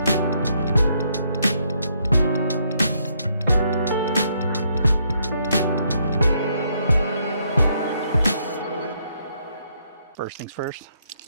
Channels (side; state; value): both; inverted; correlation -0.73